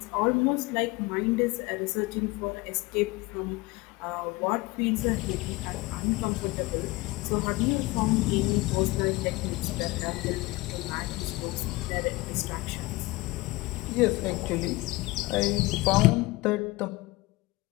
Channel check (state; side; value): quieter; right; 21.5 dB